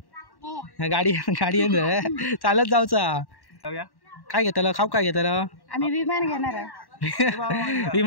गाडी गाडी चालत जाऊचा। काय घेतलं खाऊ काय घेतलं? आम्ही विमान घेणार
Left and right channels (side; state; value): right; late; 1.1 ms